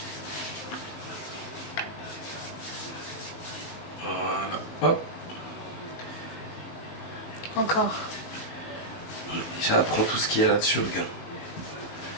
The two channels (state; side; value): late; right; 18 ms